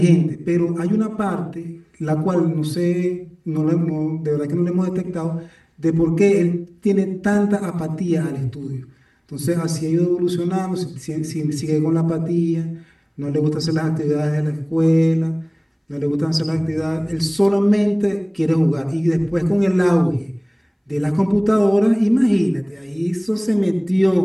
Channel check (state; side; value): identical; both; correlation 1.00